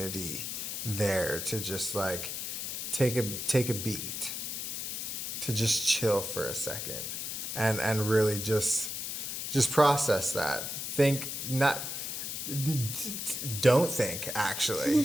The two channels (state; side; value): noise; left; hiss, 4 dB below the sound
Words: there to just like take a beat, to just chill for a second, and really just process that. Don't think,